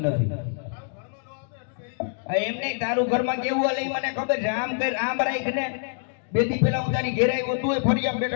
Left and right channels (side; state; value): right; silent; digital silence